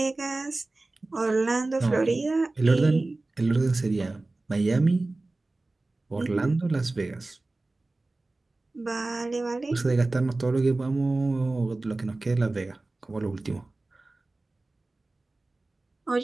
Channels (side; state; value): left; quieter; 3.1 dB